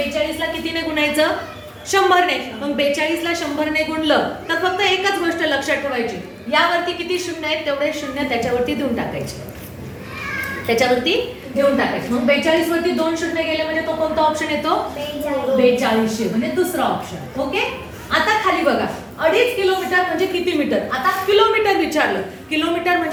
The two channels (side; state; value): both; identical; correlation 1.00